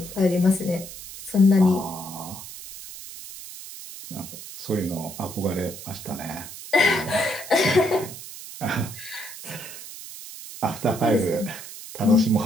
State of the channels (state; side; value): noise; right; hiss, 13 dB below the sound